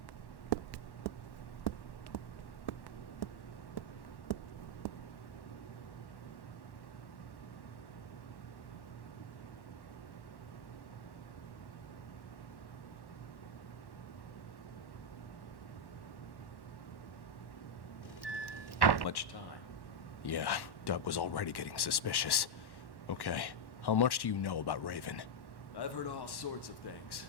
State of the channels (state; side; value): late; right; 1.1 ms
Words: Much time. Yeah, Doug was already getting suspicious. Okay, how much do you know about Raven? I've heard all sorts of things.